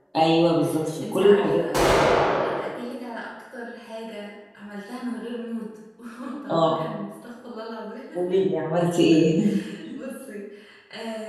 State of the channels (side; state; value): both; identical; correlation 1.00